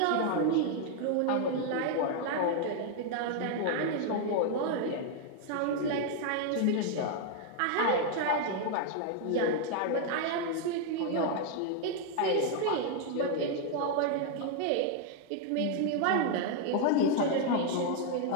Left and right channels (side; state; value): both; different; correlation 0.00